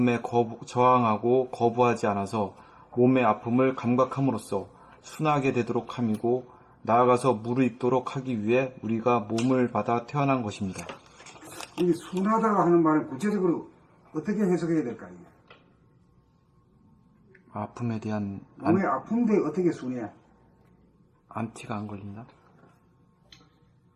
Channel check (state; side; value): identical; both; correlation 1.00